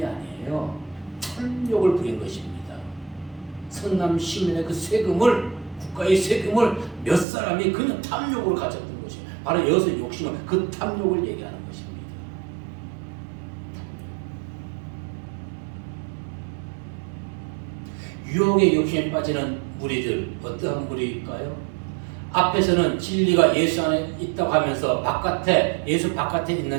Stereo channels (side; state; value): left; drops out; at 7.2 s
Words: 아니에요. 탐욕을 부린 것입니다. 성남 시민의 그 세금을 국가의 세금을 몇 사람이 그냥 탐욕으로 가졌던 것이 바로 여기서 욕심은 그 탐욕을 얘기하는 것입니다. 유혹의 욕심에 빠지는 무리들 어떠한 무리일까요? 앞에서는 진리가 예수 안에 있다고 하면서 예수 바깥에